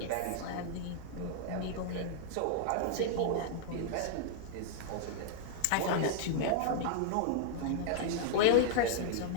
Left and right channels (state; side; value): different; both; correlation -0.01